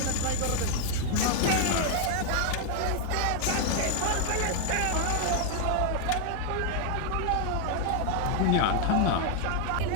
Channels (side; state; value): both; different; correlation 0.00